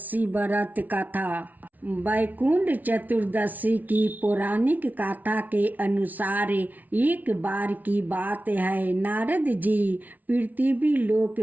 व्रत कथा। वैकुंठ चतुर्दशी की पौराणिक कथा के अनुसार एक बार की बात है, नारद जी पृथ्वी लोक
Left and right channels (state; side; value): late; left; 0.077 ms